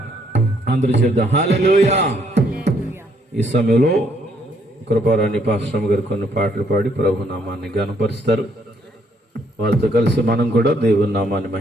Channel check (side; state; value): both; normal; correlation 0.69